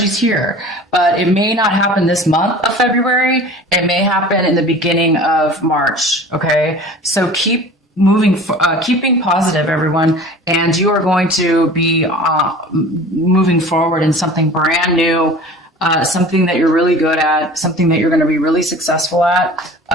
here, but it may not happen this month of February. It may happen in the beginning of March. Okay, so keep keeping positive, everyone, and you are going to be moving forward in something brand new, something that you're really good at, something that you're going to be really successful at,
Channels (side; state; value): both; normal; correlation 0.42